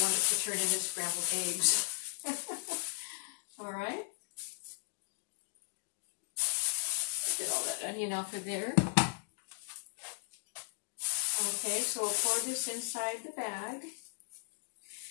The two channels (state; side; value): silent; right; digital silence